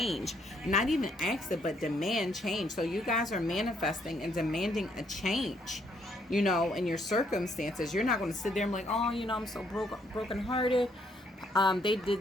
Not even ask it, but demand change. So you guys are manifesting and demanding a change, you know, in your circumstances. You're not going to sit there and be like, oh, you know, I'm so broken hearted. They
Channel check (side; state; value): both; normal; correlation 0.70